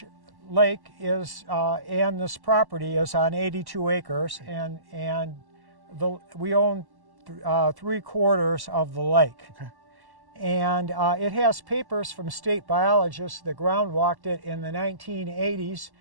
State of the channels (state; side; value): late; left; 1.1 ms